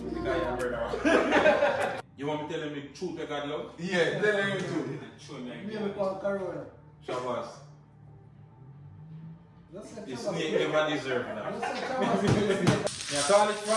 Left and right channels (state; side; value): identical; both; correlation 1.00